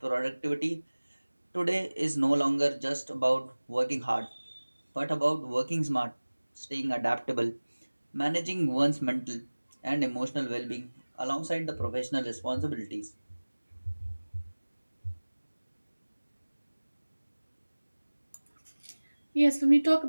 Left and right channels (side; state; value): both; inverted; correlation -1.00